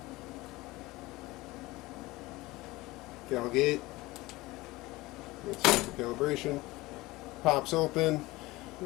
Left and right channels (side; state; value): right; quieter; 20.2 dB